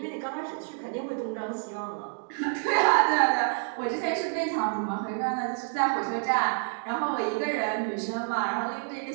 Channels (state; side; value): silent; left; 59 dB below the other